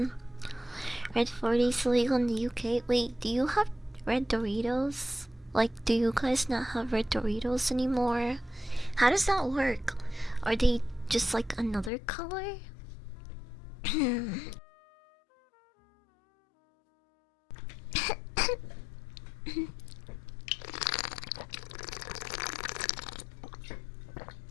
Red 40 is illegal in the UK. Wait, do you have red Doritos? Like, do you guys not have red Doritos anymore? How does that work? Are they just like another color?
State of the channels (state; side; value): drops out; right; at 11.9 s